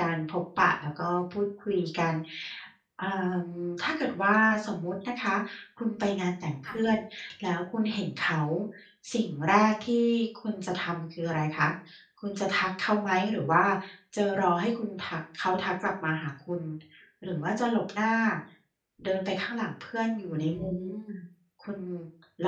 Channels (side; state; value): both; identical; correlation 1.00